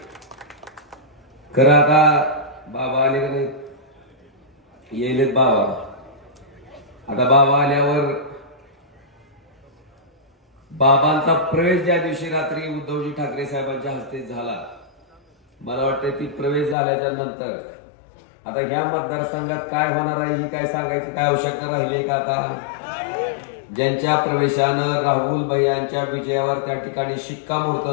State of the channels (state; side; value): drops out; right; at 16.8 s